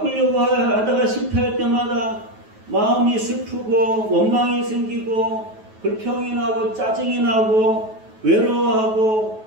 하다가 실패할 때마다 마음이 슬프고 원망이 생기고 불평이 나고 짜증이 나고 외로워하고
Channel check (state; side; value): late; left; 9.3 ms